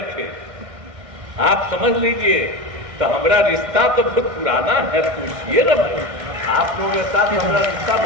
थे। आप समझ लीजिए, तो हमारा रिश्ता तो बहुत पुराना है, पूछिए ना, आप लोगों के साथ हमारा रिश्ता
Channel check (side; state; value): left; late; 1.6 ms